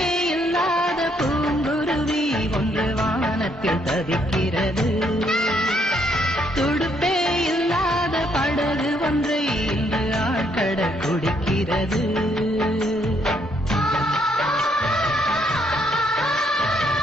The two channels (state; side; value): normal; both; correlation 0.71